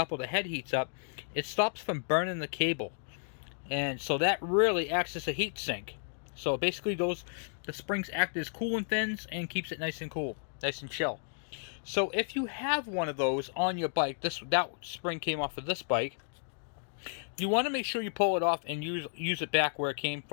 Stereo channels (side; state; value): right; silent; digital silence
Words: or the head heats up, it stops from burning the cable. And so that really acts as a heat sink. So basically the springs act as coolant fins and keeps it nice and cool, nice and chill. So if you have one of those on your bike, that spring came off of this bike, you want to make sure you pull it off and use it back where it came